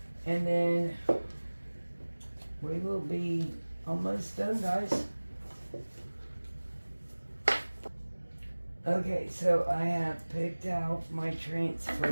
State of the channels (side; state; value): both; inverted; correlation -1.00